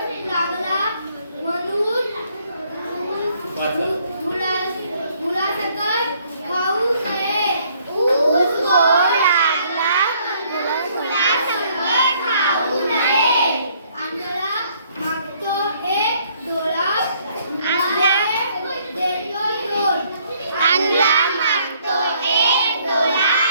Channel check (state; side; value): inverted; both; correlation -0.65